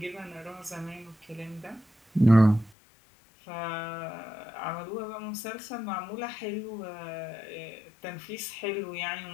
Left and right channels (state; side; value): drops out; right; at 2.7 s